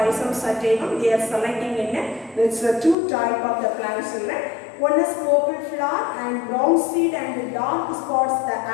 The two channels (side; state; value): right; drops out; at 3.0 s